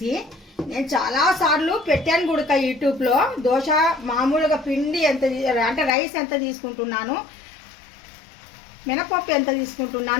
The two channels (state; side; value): drops out; right; at 6.0 s